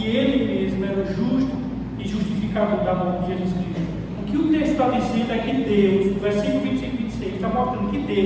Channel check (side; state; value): both; identical; correlation 1.00